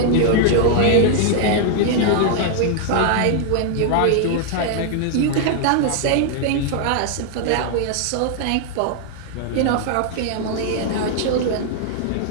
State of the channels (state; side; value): different; both; correlation -0.01